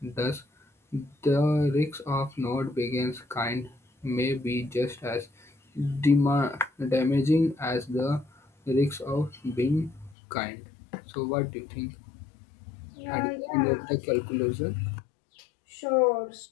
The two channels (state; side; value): drops out; right; at 10.2 s